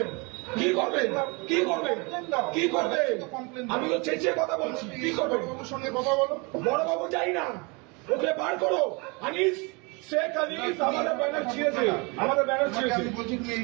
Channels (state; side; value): quieter; left; 29.7 dB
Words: কি করবেন? কি করবেন? কি করবেন? আমি তো চেঁচিয়ে কথা বলছি। কি করবেন? সঙ্গে কথা বলো। বড়বাবু যাই না, ওকে বার করো। আনিস, শেখ আনিস আমাদের ব্যানার ছিঁড়েছে, আমাদের ব্যানার ছিঁড়েছে। আমি বলছি তুমি